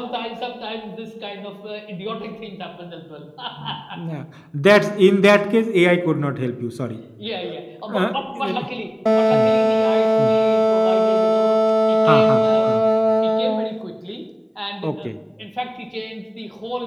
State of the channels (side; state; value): both; identical; correlation 1.00